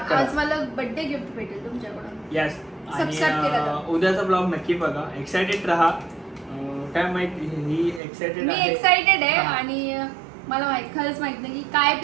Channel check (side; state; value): left; drops out; at 8.0 s